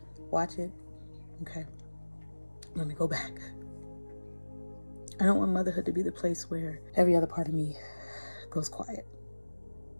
Watch it. Okay. Let me go back. I don't want motherhood to be the place where every other part of me goes quiet.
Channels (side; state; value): both; inverted; correlation -1.00